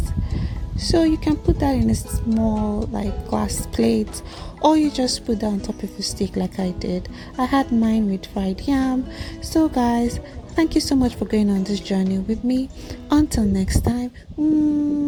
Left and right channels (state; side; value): identical; both; correlation 1.00